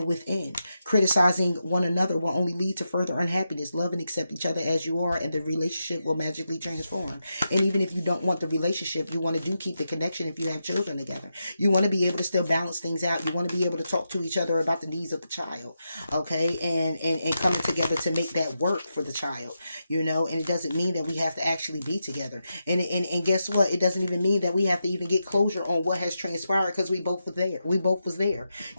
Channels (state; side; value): inverted; both; correlation -0.87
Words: within. Criticizing one another will only lead to further unhappiness. Love and accept each other as you are, and the relationship will magically transform. And even if you don't want the relationship, you want to keep the connection if you have children together. You want to be able to still balance things out. You want to be able to talk to each other about the needs of the child. Okay, and coming together to make that work for the child. And it doesn't mean that we have to actually be together. And guess what? It doesn't even mean that we have to even get closure on what has transpired, because we both were there. We both was there.